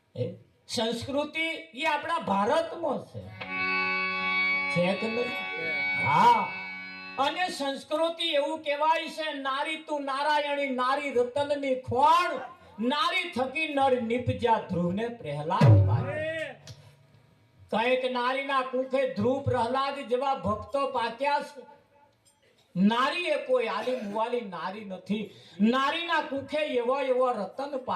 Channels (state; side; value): identical; both; correlation 1.00